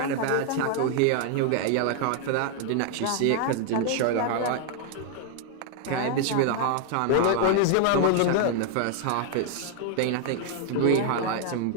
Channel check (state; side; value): different; both; correlation 0.00